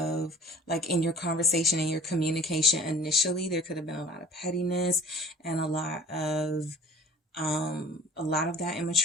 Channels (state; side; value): normal; both; correlation 0.46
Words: like, in your conversation and your communication initially, there could have been a lot of pettiness and a lot of that